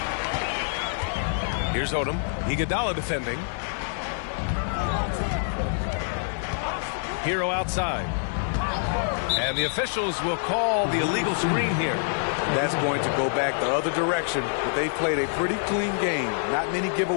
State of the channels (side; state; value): right; silent; digital silence